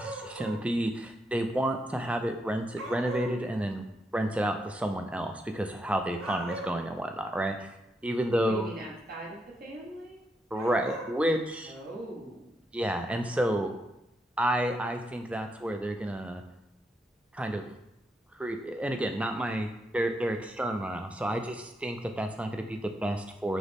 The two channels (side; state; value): both; normal; correlation 0.81